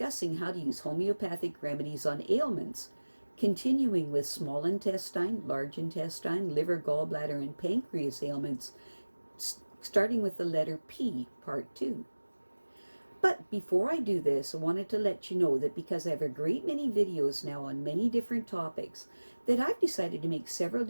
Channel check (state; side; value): inverted; both; correlation -1.00